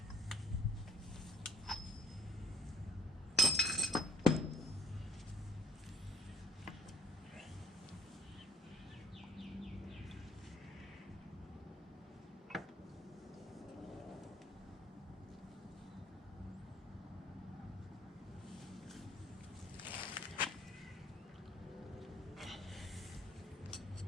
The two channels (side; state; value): both; normal; correlation 0.58